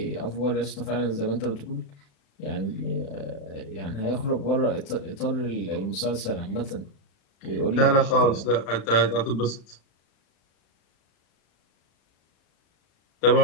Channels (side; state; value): right; late; 35 ms